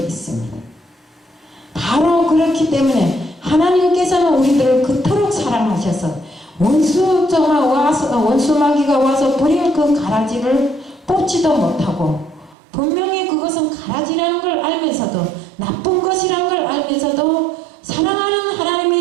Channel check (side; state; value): left; drops out; at 12.6 s